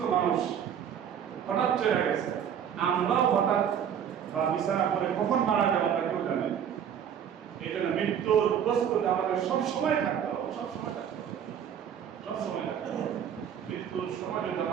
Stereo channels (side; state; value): left; quieter; 8.7 dB